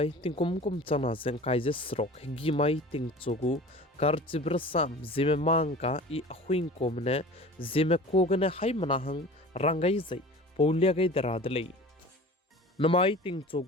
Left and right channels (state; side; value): normal; both; correlation 0.40